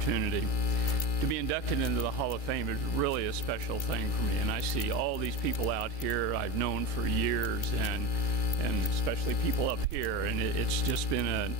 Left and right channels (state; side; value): late; right; 2.3 ms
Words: To be inducted into the Hall of Fame is really a special thing for me, and I see all these people out here I've known for years, and especially people up here, and it's just been an